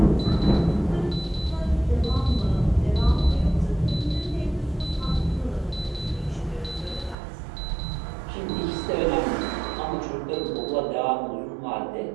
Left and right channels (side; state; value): left; drops out; at 7.2 s